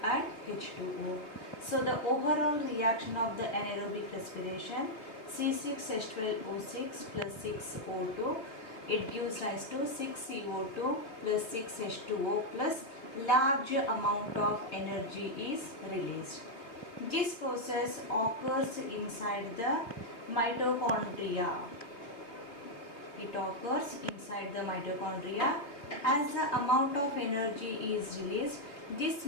and H2O. So the overall reaction of the anaerobic respiration, C6H12O6 plus 6O2, it gives rise to 6CO2 plus 6H2O plus large amount of energy is released. This process occurs inside the mitochondria. It occurs inside the mitochondria. As the amount of energy is released, this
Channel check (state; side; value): late; right; 3.5 ms